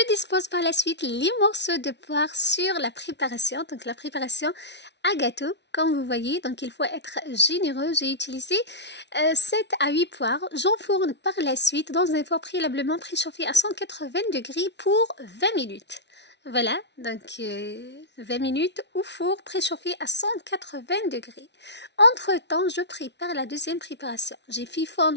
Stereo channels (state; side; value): late; right; 0.50 ms